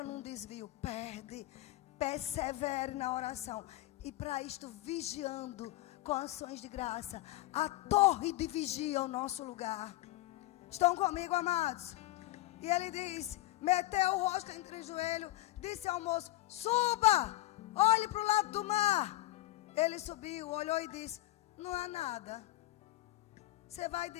num desvio, perde. Persevere na oração. E para isto, vigiando com ações de graça. A torre de vigia é o nosso lugar. Estão comigo, amados? E ele diz, meteu o rosto entre os joelhos, disse ao moço, suba, olhe para o lado do mar. Ele subiu, olhou e disse, não há nada. Você vai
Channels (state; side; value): quieter; right; 17.4 dB